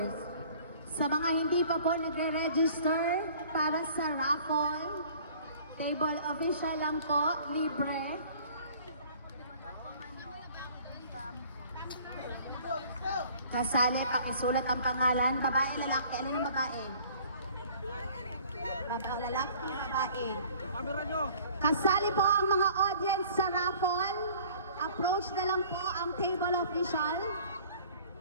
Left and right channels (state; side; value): inverted; both; correlation -0.51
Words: Sa mga hindi pa po nagre-register para sa raffle, table official lang po, libre. Kasali, pakisulat ang pangalan. Babae, lalaki. Alin ang babae? Babae, lalaki, babae. Camera nyo. Kasali po ang mga audience sa raffle. Approach na lang po ang table official.